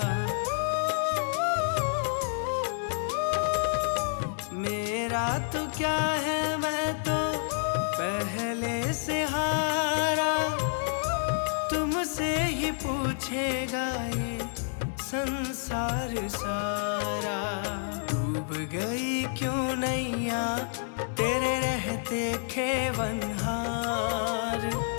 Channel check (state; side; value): silent; right; digital silence